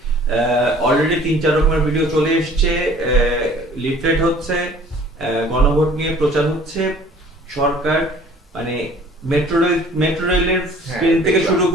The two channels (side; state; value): both; normal; correlation 0.51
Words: অলরেডি 3-4 রকমের ভিডিও চলে এসেছে, লিফলেট হচ্ছে, গণভোট নিয়ে প্রচার হচ্ছে। সরকার মানে মেট্রো রেলের স্ক্রিন থেকে শুরু